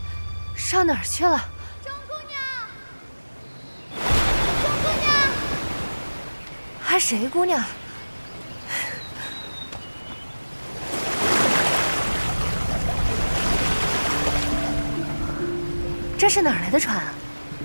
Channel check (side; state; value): both; inverted; correlation -1.00